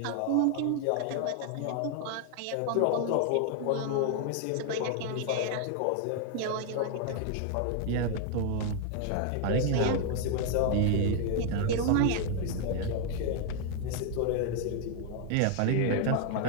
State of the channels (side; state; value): both; different; correlation 0.00